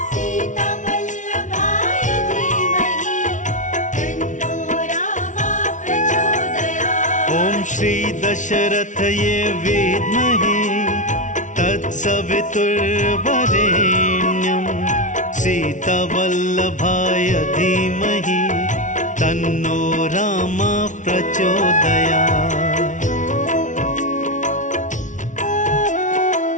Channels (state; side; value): late; right; 0.37 ms